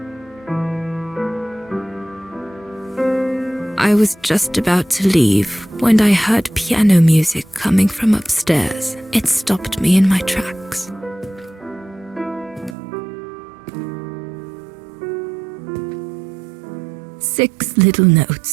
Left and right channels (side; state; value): left; drops out; at 12.8 s